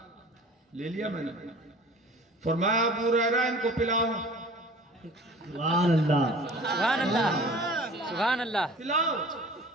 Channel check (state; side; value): normal; both; correlation 0.44